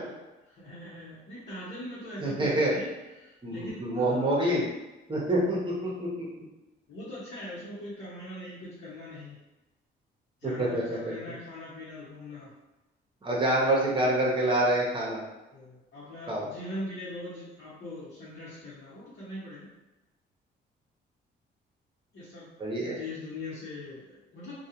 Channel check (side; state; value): both; normal; correlation 0.35